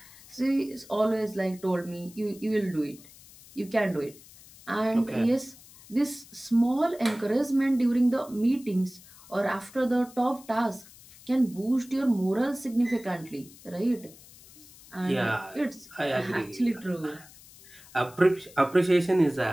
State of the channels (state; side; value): noise; left; hiss, 22 dB below the sound